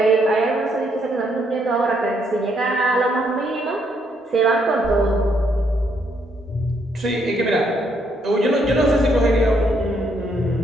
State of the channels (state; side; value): normal; both; correlation 0.73